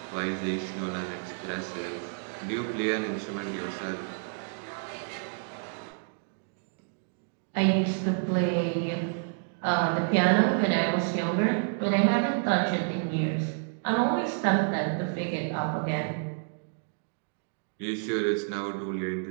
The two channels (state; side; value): silent; left; digital silence